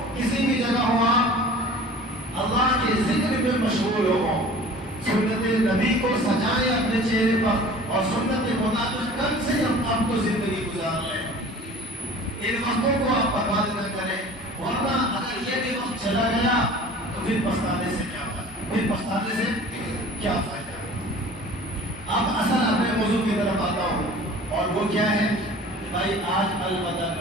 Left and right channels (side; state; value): both; normal; correlation 0.44